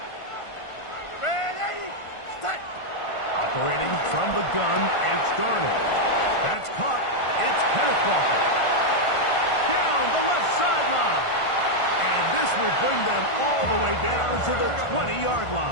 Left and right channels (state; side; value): late; right; 1.5 ms